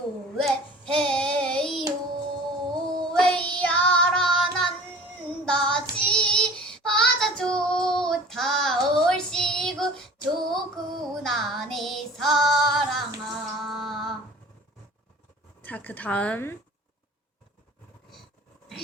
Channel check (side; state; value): both; normal; correlation 0.43